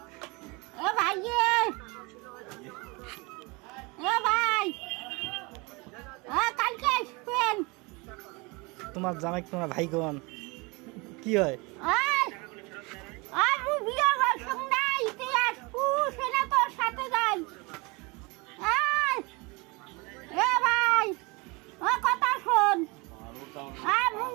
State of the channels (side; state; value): left; quieter; 26.9 dB